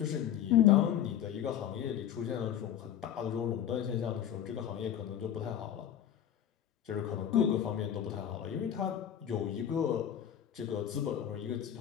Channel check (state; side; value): quieter; right; 10.1 dB